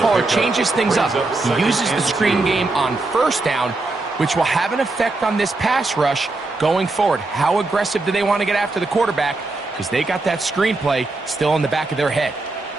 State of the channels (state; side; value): quieter; left; 3.2 dB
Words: changes things up. He uses the screen game on 1st down, which will have an effect on this pass rush going forward. How aggressive do they want to get after the quarterback? Because they got that screen play still in the back of their head.